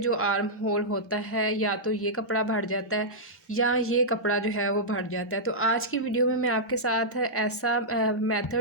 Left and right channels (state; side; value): normal; both; correlation -0.11